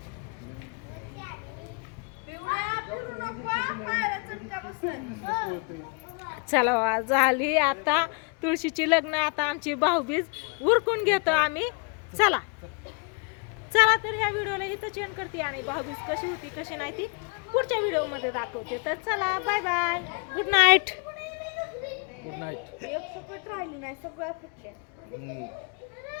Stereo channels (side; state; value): right; quieter; 35.2 dB